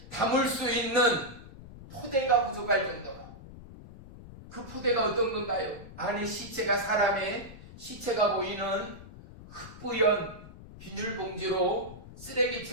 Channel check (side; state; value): left; noise; rumble, 16 dB below the sound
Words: 담을 수 있는 포대가 부족할 정도로. 그 포대가 어떤 건가요? 안에 시체가 사람의 시체가 보이는 흑부연 비닐봉지로